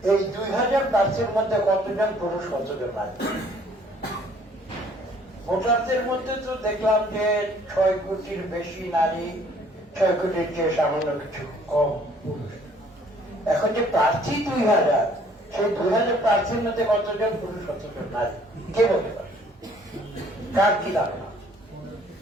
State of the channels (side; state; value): both; normal; correlation 0.59